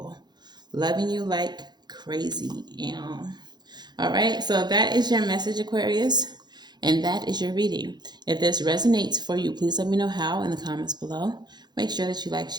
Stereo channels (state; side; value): late; left; 0.21 ms